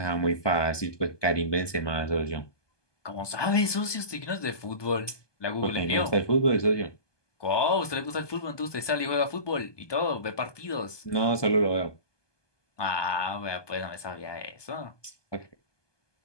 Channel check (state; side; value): late; right; 1.2 ms